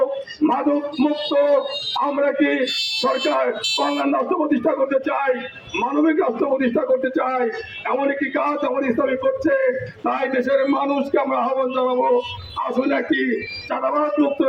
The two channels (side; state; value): both; identical; correlation 1.00